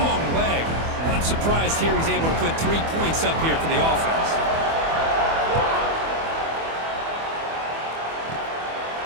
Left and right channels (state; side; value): late; left; 24 ms